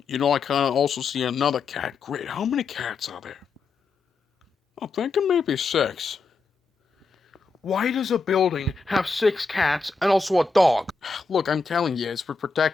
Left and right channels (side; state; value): right; quieter; 4.3 dB